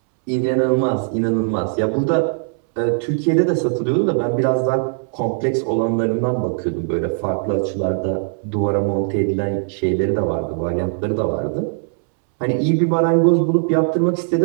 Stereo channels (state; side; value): silent; left; 66 dB below the other